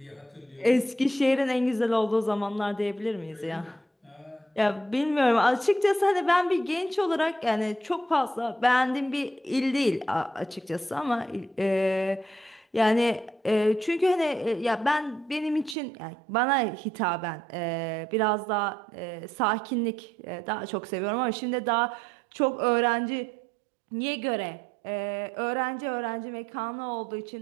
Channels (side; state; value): left; drops out; at 15.8 s